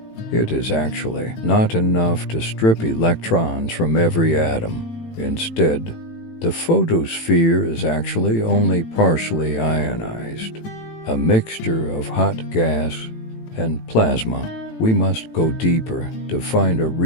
it is actually not enough to strip electrons from every atom. Instead, the photosphere is actually only partially ionized, a mixture of hot gas and plasma. We must go deeper to find a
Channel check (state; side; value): late; right; 18 ms